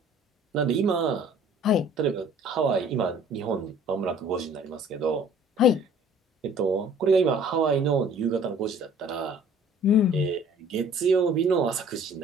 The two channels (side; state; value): both; normal; correlation 0.52